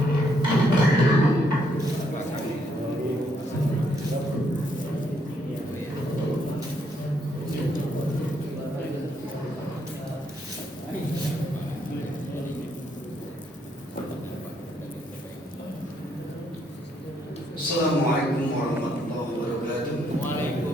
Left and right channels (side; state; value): both; normal; correlation 0.73